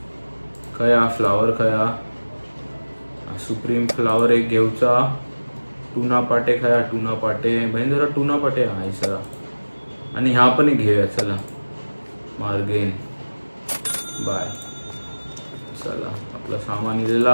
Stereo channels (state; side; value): inverted; both; correlation -1.00